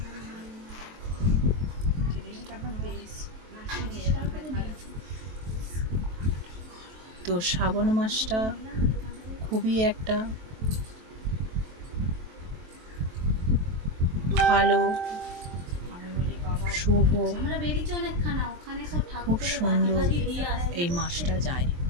তো শ্রাবণ মাসটা খুবই একটা ভালো, শুভ, খুব সুন্দর এই মাসটা যায়।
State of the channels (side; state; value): left; late; 23 ms